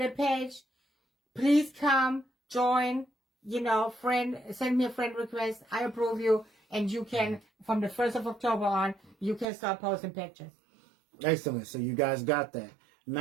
page. Please come, join, send me a friend request. I approve you. And you can, from the 1st of October on, you can start posting pictures. Excellent. So you guys got that.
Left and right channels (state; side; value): drops out; left; at 9.5 s